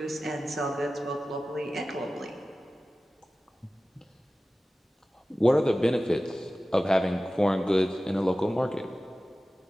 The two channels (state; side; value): normal; both; correlation 0.96